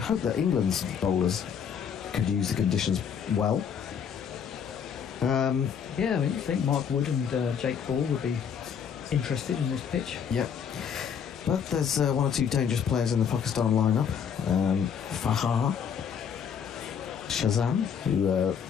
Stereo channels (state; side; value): quieter; right; 7.4 dB